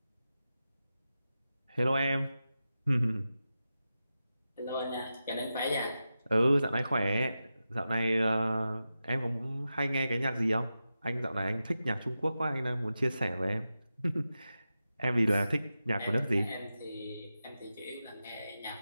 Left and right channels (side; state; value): both; inverted; correlation -0.92